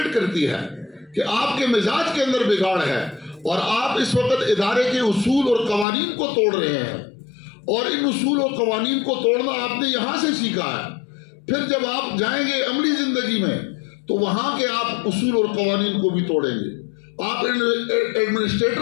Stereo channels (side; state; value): right; drops out; at 5.9 s